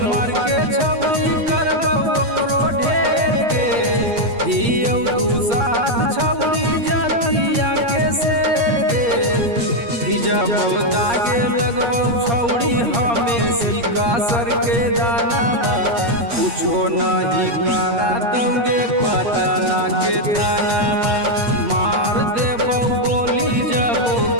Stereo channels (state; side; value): late; left; 8.5 ms